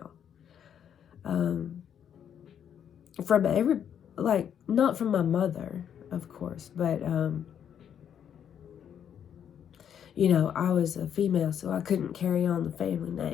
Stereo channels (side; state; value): right; quieter; 8.8 dB